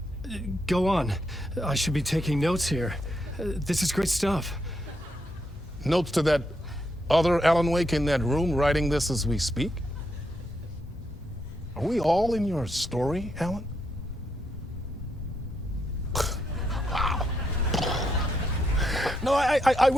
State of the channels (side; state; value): both; normal; correlation 0.80